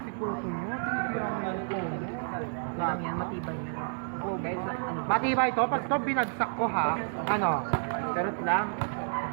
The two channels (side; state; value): left; silent; 58 dB below the other